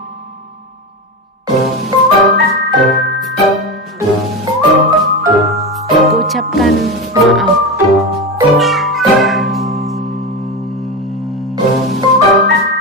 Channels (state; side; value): normal; both; correlation 0.20